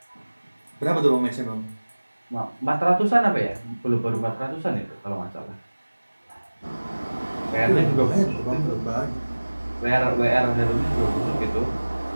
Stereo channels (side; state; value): both; inverted; correlation -1.00